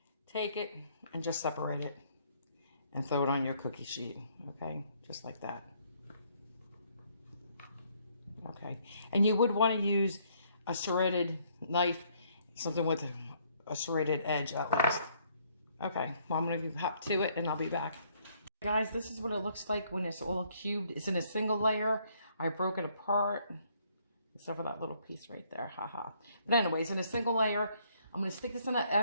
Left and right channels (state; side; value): inverted; both; correlation -0.67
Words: take it and just separate it and throw it on your cookie sheet. Okay, just like that. Okay, and you would want to use a serrated knife, something with a serrated edge at least. Okay, well, I'm going to hop to it and I'll be back. Guys, this is what it looks like when it's all cubed. It's in a single layer. I broke it apart. Except for that little piece right there, haha. But anyways, in a single layer, I'm going to stick this in